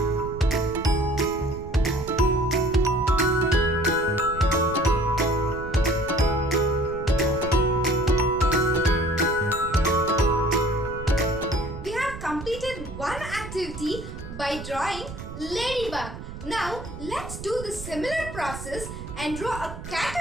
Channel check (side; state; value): right; noise; rumble, 11 dB below the sound